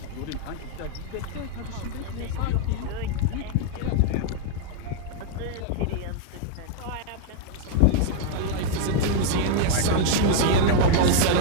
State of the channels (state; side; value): different; both; correlation 0.00